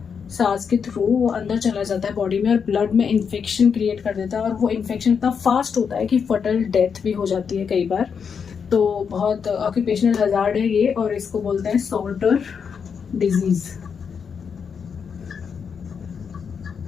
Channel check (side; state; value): right; quieter; 6.5 dB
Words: सांस के थ्रू वो अंदर चला जाता है बॉडी में, और ब्लड में इन्फेक्शन क्रिएट कर देता है, और वो इन्फेक्शन इतना फास्ट होता है कि फटल डेथ भी हो जाती है कई बार। तो बहुत ऑक्यूपेशनल हज़ार्ड है ये, और इसको बोलते हैं सॉर्टर डिजीज़,